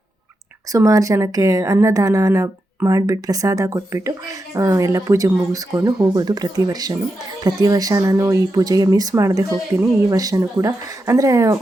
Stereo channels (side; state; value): both; normal; correlation 0.87